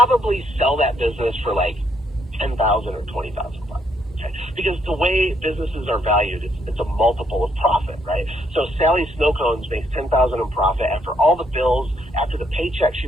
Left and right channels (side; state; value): both; normal; correlation 0.72